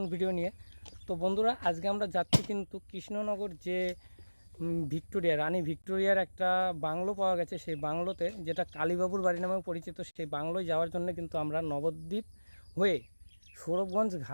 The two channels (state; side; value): inverted; both; correlation -1.00